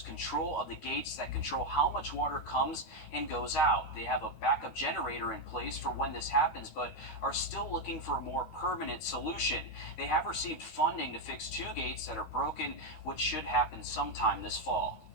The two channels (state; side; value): late; right; 13 ms